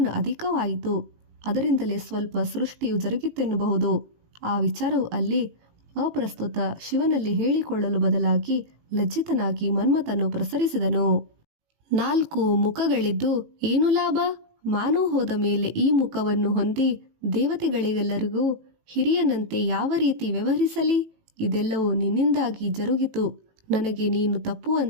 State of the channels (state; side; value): late; left; 18 ms